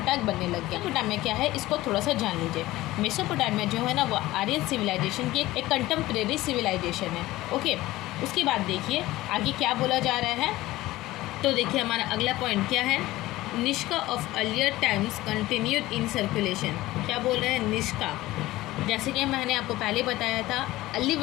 बनने लग गया। मेसोपोटामिया क्या है इसको थोड़ा सा जान लीजिए। मेसोपोटामिया जो है ना वो आर्यन सिविलाइजेशन की एक कंटेम्प्रेरी सिविलाइजेशन है। ओके, उसके बाद देखिए आगे क्या बोला जा रहा है। तो देखिए हमारा अगला पॉइंट क्या है, Nishka of earlier times continued in circulation. क्या बोल रहे हैं, निष्का। जैसे कि मैंने आपको पहले बताया था, अर्ली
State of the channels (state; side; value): quieter; right; 17.4 dB